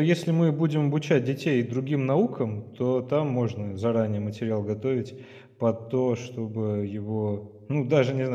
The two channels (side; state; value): both; identical; correlation 1.00